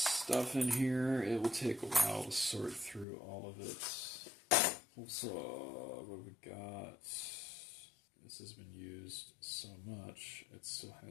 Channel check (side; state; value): right; drops out; at 3.1 s